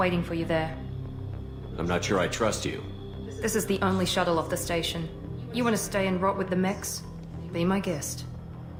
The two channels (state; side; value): identical; both; correlation 1.00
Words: for you there. I'm not sure I trust you. This is the only shuttle off the station. You want to stay and rot with the mechs? Be my guest.